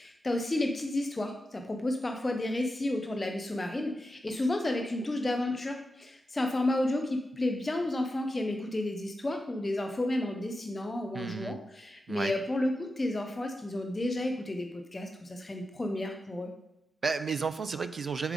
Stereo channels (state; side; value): normal; both; correlation 0.89